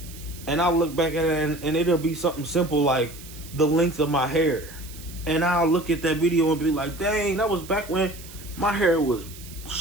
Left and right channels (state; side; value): noise; right; hiss, 17 dB below the sound